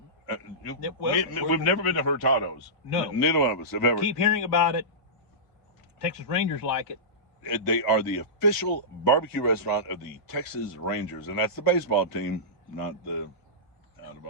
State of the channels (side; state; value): right; late; 2.0 ms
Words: Well, we've never been to Hurtado's. No. Neither one of us have ever. Keep hearing about it. Texas Rangers like it. They are the official barbecue restaurant of the Texas Rangers, and that's the baseball team, not the out of